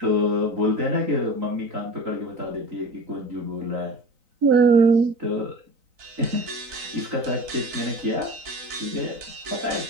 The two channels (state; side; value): late; left; 3.9 ms